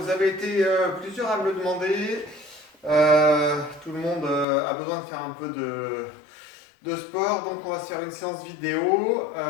avez été plusieurs à me le demander. Tout le monde a besoin de faire un peu de sport, donc on va se faire une séance vidéo.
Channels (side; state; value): right; drops out; at 4.5 s